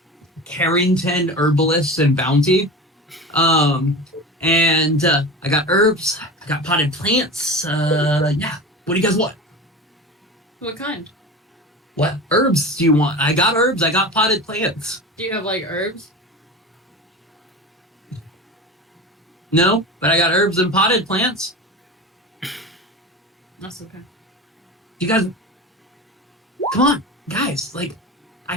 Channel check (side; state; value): both; normal; correlation 0.30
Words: Carrington Herbalists and Bounty. And I got herbs, I got potted plants. Yeah. What do you guys want? What kind? What herbs do you want? I got herbs, I got potted plants. Do you have like herbs? No, but I got herbs and potted plants. That's okay. You guys, come on, guys. Like, I